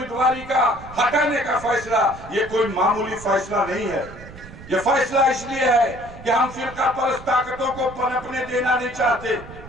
का हटाने का फैसला ये कोई मामूली फैसला नहीं है। ये फैसला इसलिए है कि हम फिरका परस्त ताकतों को पनपने देना नहीं चाहते।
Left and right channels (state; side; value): noise; right; rumble, 16 dB below the sound